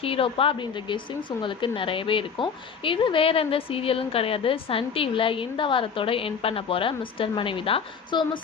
ஹீரோப்பா அப்படின்ற கெஸ்ஸிங்ஸ் உங்களுக்கு நிறையவே இருக்கும். இது வேறு எந்த சீரியலும் கிடையாது. சன் டிவியில் இந்த வாரத்தோட எண்ட் பண்ண போகிற மிஸ்டர் மனைவி தான். ஸோ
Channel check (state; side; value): quieter; right; 6.4 dB